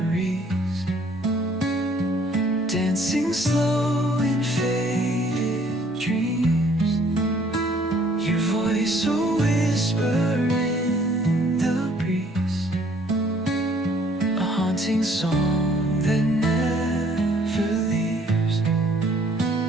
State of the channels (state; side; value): normal; both; correlation 0.61